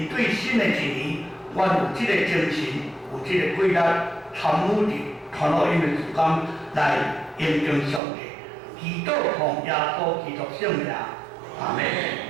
对新的一年，阮有这个精神，有这个规律，参与伫传福音的事工来应用上帝，祈祷奉耶稣基督圣名，阿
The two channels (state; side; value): drops out; left; at 8.0 s